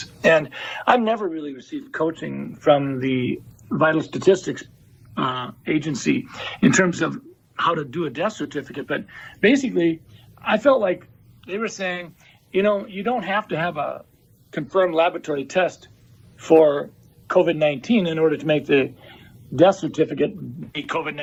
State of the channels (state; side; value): identical; both; correlation 1.00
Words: And I've never really received coaching from the Vital Statistics agency in terms of how to do a death certificate. But basically, I felt like they were saying, you know, you don't have to have a confirmed laboratory test for COVID-19 in order to make the death certificate be